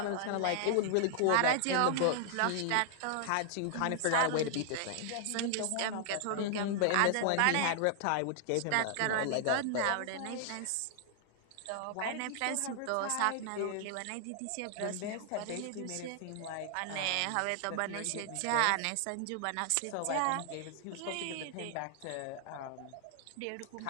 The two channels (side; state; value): both; different; correlation 0.00